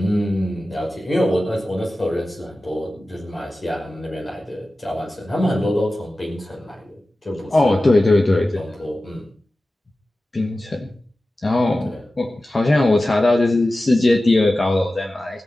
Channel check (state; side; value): normal; both; correlation 0.95